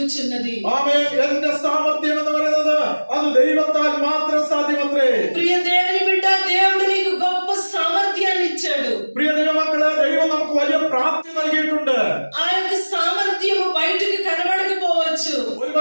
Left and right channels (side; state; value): both; inverted; correlation -1.00